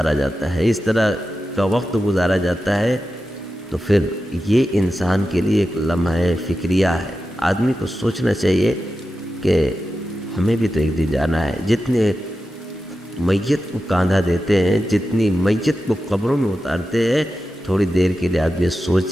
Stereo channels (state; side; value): normal; both; correlation 0.91